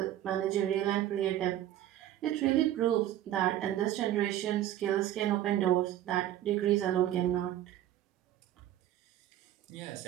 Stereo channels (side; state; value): left; quieter; 12.5 dB